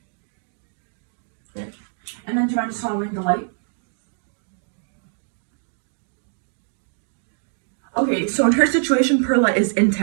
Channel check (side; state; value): left; silent; digital silence